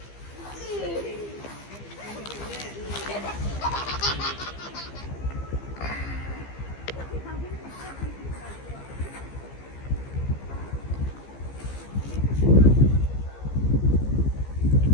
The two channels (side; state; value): right; late; 15 ms